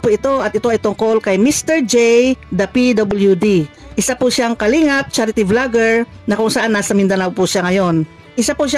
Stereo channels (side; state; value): both; identical; correlation 1.00